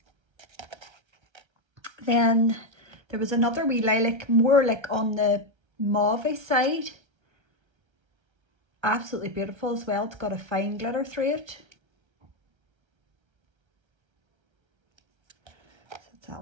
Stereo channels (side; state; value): left; late; 1.3 ms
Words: Then there was another wee lilac, more like on the mauve side. Absolutely beautiful as well. It's got a fine glitter through it. So that's